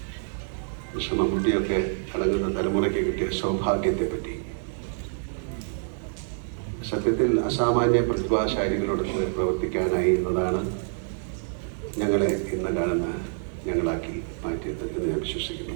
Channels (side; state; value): left; silent; digital silence